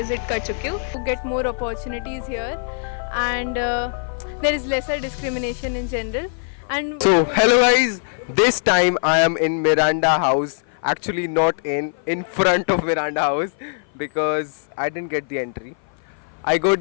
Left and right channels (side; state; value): right; silent; 55 dB below the other